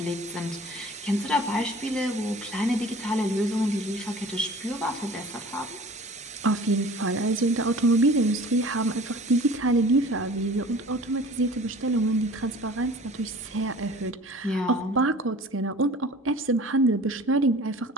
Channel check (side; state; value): both; normal; correlation 0.44